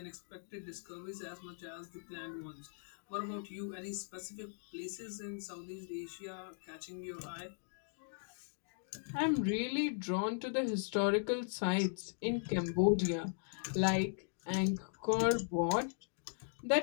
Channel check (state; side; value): silent; right; digital silence